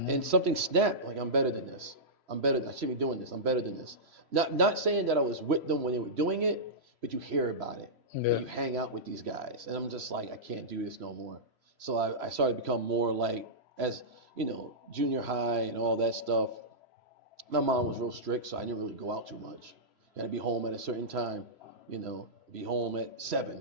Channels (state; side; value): late; left; 3.0 ms